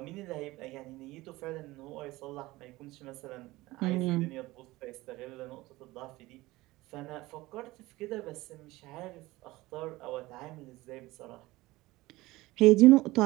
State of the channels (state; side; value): quieter; left; 19.4 dB